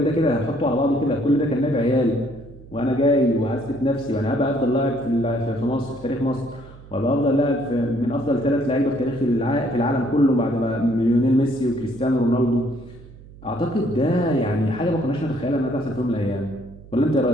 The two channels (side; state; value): right; noise; hum, 20 dB below the sound